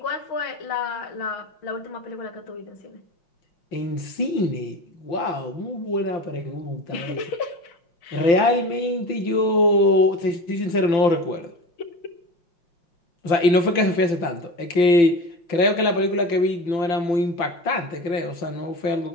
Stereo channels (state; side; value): late; right; 5.9 ms